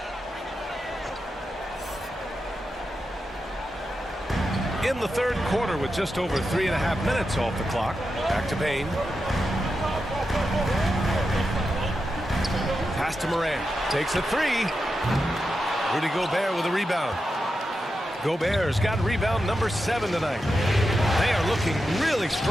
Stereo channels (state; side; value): normal; both; correlation 0.89